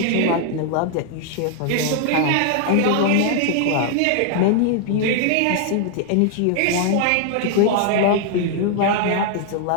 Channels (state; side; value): different; both; correlation 0.00